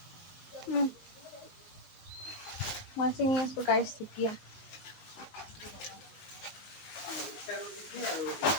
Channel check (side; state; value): right; late; 20 ms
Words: মই চিঙি আছো গাইছ এতিয়া।